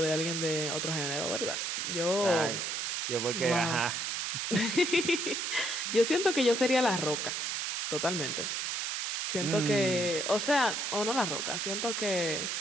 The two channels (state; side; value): noise; right; hiss, 1 dB below the sound